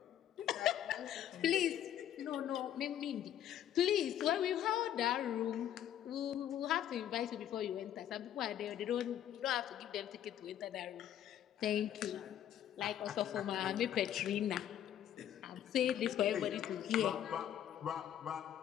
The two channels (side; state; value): right; quieter; 10.8 dB